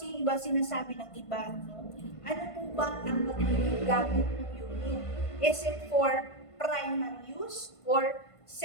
yung iba sinasabi ng iba, no? Ano po ba ang magiging gamit ng unit? Is it for primary use or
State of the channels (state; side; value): late; right; 1.5 ms